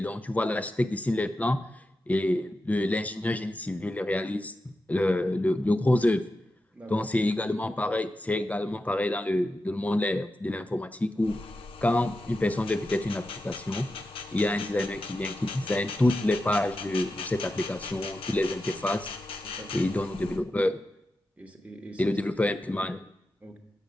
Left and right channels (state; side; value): normal; both; correlation 0.90